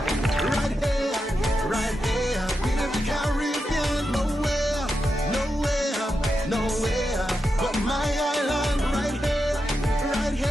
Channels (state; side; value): normal; both; correlation 0.88